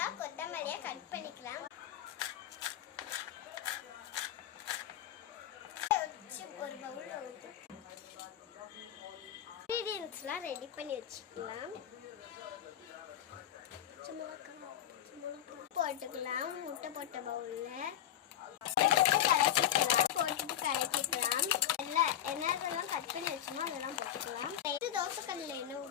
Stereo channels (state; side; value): quieter; right; 11.1 dB